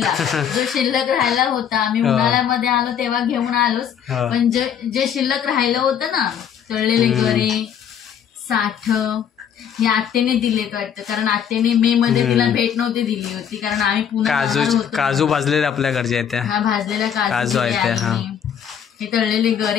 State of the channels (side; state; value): right; quieter; 8.5 dB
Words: जो शिल्लक राहिला होता. आम्ही उन्हाळ्यामध्ये आलो तेव्हा घेऊन आलोच, पण जे शिल्लक राहिलं होतं ना, तळलेले गरे, साठ, हे आत्याने दिले वाटतं, कारण आत्याने मे मध्ये तिला भेट नव्हती दिली होती, कारण आम्ही पुन्हा काजू भाजलेले आपल्या घरचे आहेत, हा भाजलेल्या काजू आहेत. हे तळलेले